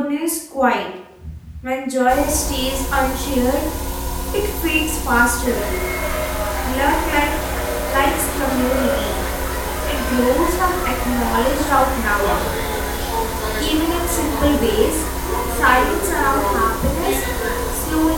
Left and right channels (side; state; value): both; identical; correlation 1.00